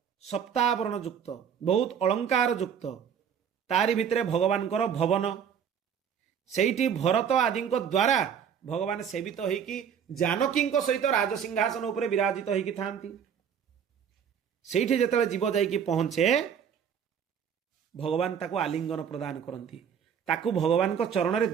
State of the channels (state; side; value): quieter; left; 7.9 dB